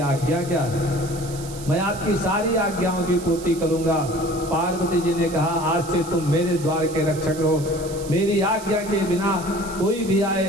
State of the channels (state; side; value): noise; right; hiss, 15 dB below the sound